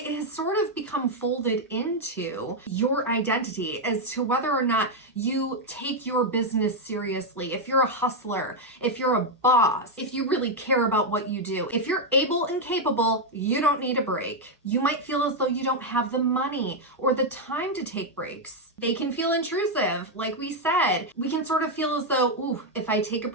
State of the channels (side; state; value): both; normal; correlation 0.01